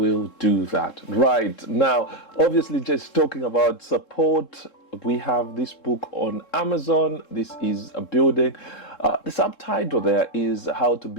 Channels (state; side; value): late; right; 3.7 ms